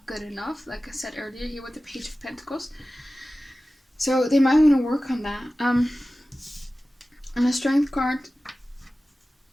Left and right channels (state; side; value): normal; both; correlation 0.96